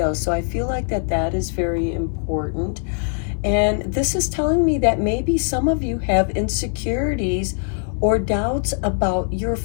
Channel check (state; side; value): silent; right; 63 dB below the other